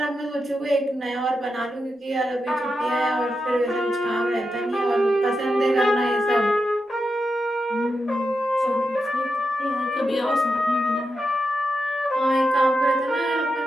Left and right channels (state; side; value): normal; both; correlation 0.87